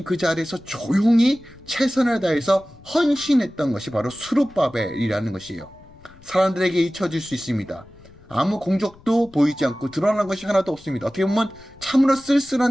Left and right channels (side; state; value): left; noise; rumble, 24 dB below the sound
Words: 그 자리에서 조용히 최선을 다해서 헌신했던 것이 바로 스룹바벨이라는 것이에요. 사람들에게 잊혀질 수 있습니다. 아무 공적도 보이지 않고 드러난 것이 하나도 없습니다. 어떻게 보면 참으로